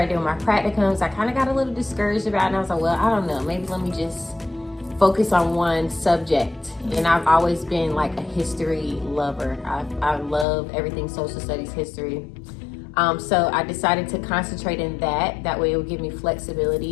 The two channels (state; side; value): drops out; right; at 10.5 s